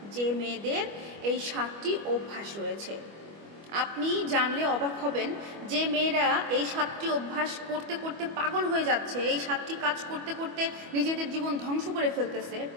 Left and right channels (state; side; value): late; left; 25 ms